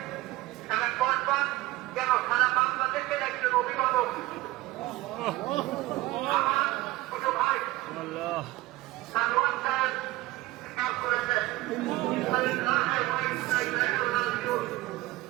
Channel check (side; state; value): left; quieter; 18.6 dB